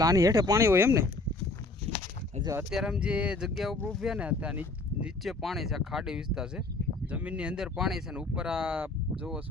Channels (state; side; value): quieter; right; 3.2 dB